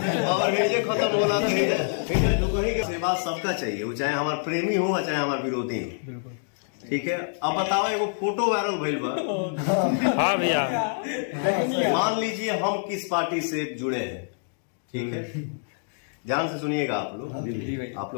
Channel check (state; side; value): silent; right; digital silence